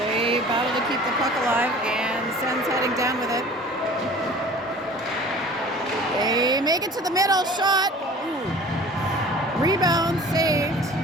battle to keep the puck alive, and Sens heading down with it. They make it to the middle, shot. Ooh. Rebound saved.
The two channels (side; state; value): both; normal; correlation 0.45